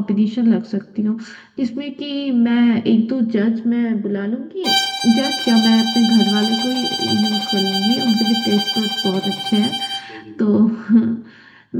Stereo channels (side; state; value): both; identical; correlation 1.00